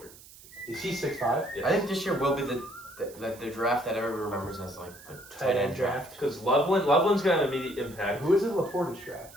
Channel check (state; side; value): noise; right; hiss, 20 dB below the sound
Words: Is he 6'5"? I think this year will be the draft that everyone remembers as like the Tight end draft. Because Loveland's gonna have immediate impact. Who is in Laporta's draft?